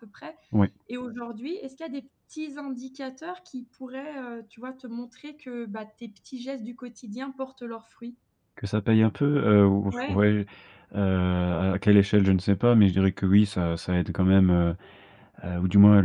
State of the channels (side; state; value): both; identical; correlation 1.00